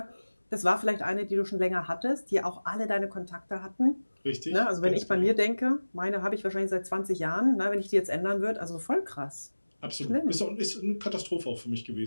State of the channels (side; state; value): both; inverted; correlation -1.00